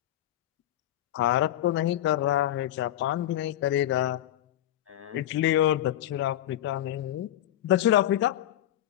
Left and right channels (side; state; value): right; quieter; 12.7 dB